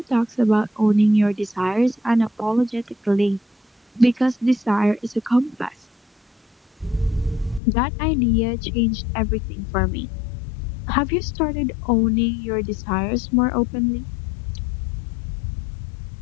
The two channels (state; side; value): drops out; right; at 7.6 s